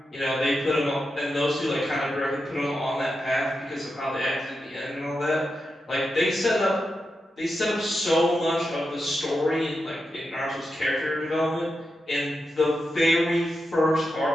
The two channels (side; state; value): both; normal; correlation 0.88